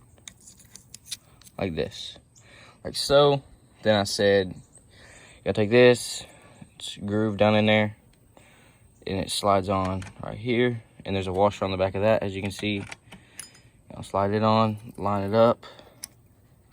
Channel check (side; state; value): both; identical; correlation 1.00